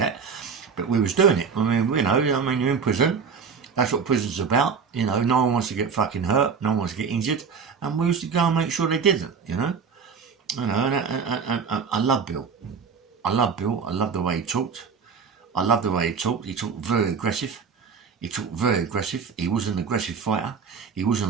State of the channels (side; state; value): left; quieter; 5.9 dB